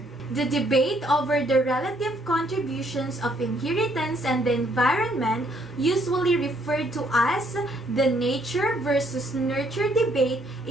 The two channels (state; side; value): normal; both; correlation 0.68